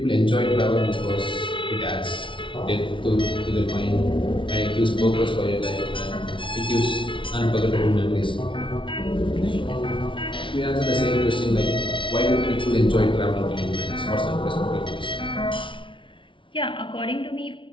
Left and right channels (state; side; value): late; right; 0.25 ms